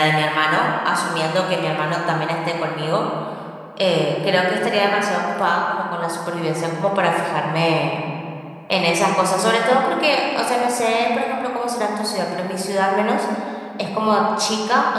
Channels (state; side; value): identical; both; correlation 1.00